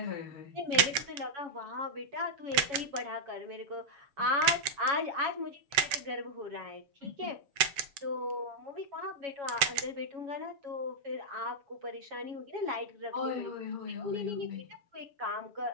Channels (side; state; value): left; late; 7.6 ms